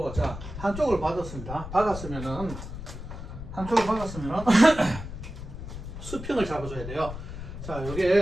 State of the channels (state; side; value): noise; left; rumble, 9 dB below the sound